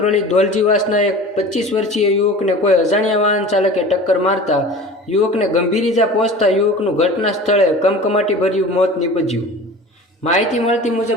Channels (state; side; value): normal; both; correlation 0.38